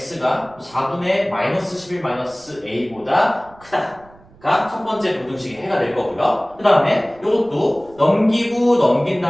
4분의 마이너스 11 마이너스 a보다 크다가 첫 번째 부등식의 해가 될 거고요. 그 다음에 이것도 넘기고 넘긴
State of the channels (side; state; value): right; noise; rumble, 26 dB below the sound